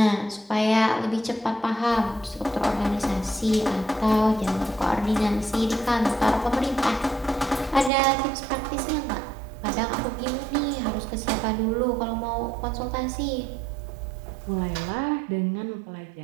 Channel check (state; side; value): drops out; left; at 7.9 s